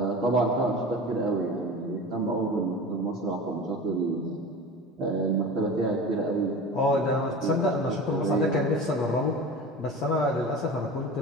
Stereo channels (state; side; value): normal; both; correlation 0.34